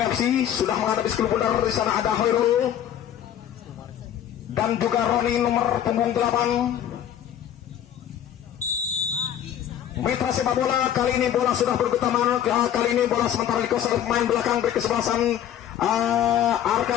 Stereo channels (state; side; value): quieter; right; 10.3 dB